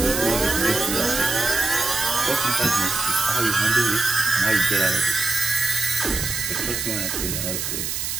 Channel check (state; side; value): noise; right; hiss, 3 dB below the sound